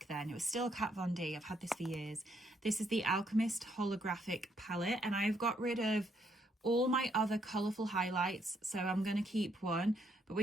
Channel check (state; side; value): normal; both; correlation 0.73